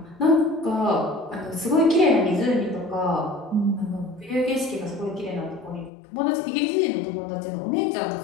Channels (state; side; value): drops out; right; at 5.9 s